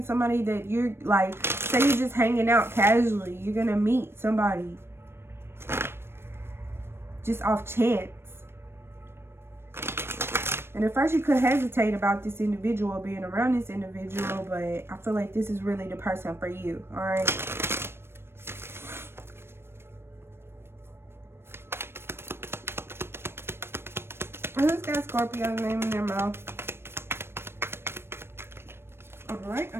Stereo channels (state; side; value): late; left; 0.12 ms